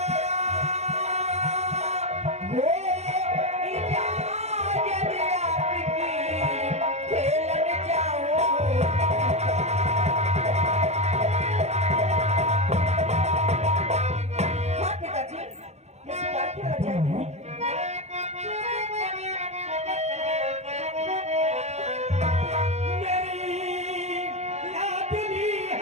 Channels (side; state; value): left; late; 0.32 ms